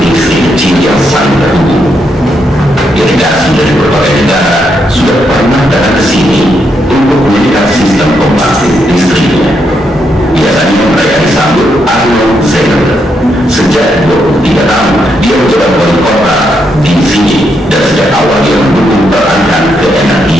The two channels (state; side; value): normal; both; correlation 0.79